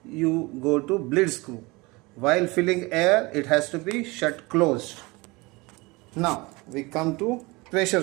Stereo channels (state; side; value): quieter; left; 24.3 dB